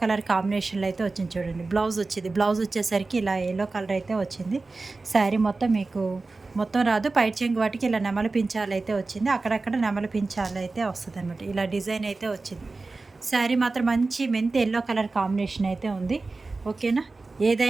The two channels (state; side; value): quieter; left; 3.6 dB